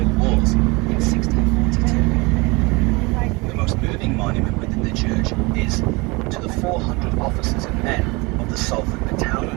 Wars in 1642. The most moving monument within the church is to the 400 officers and men of the Salford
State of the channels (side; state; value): left; quieter; 25.7 dB